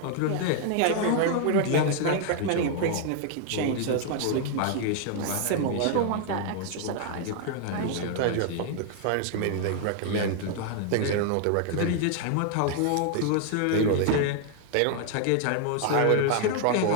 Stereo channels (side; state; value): both; different; correlation 0.00